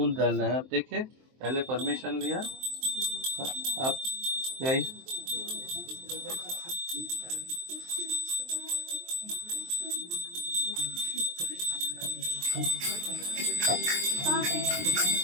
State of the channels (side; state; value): left; late; 23 ms